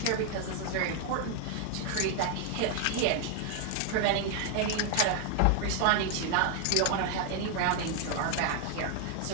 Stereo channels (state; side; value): different; both; correlation 0.00